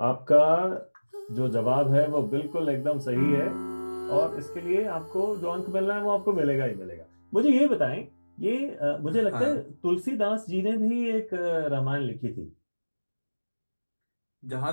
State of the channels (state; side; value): inverted; both; correlation -1.00